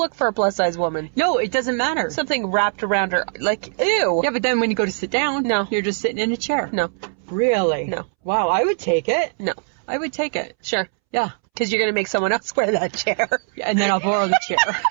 for a plus-size woman. No, it doesn't matter. Something wrapped around her, like, ew. Yeah, but then when you go to sit down, no, you're just sitting in a chair. No. Really? No. Wow, I would take it. No. I would take it. Sure. Yeah. Because you're going to make someone else wear that chair. Yeah, and then I'll borrow the chair.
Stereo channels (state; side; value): silent; left; 65 dB below the other